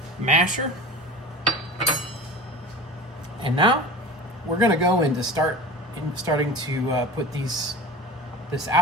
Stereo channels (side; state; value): both; normal; correlation 0.35